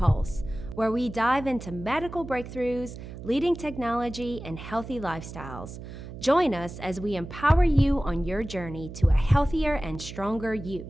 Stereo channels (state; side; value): noise; right; hum, 12 dB below the sound